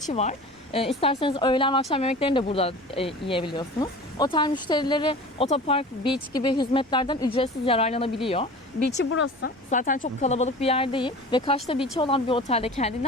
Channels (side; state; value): both; normal; correlation 0.38